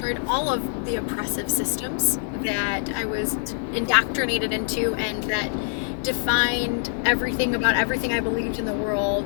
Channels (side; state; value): right; quieter; 35.3 dB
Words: all of the oppressive systems that I was indoctrinated into and that defined everything about everything I believed in the